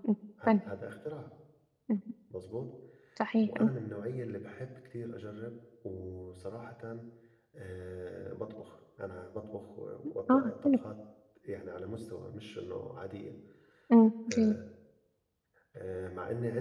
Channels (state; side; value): identical; both; correlation 1.00